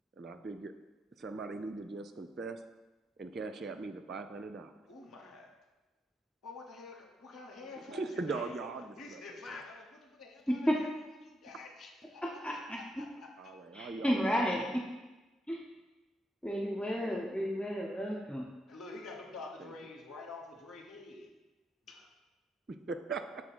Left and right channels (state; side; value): normal; both; correlation 0.82